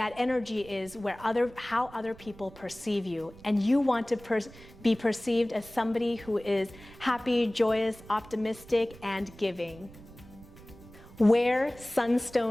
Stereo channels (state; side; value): noise; right; rumble, 20 dB below the sound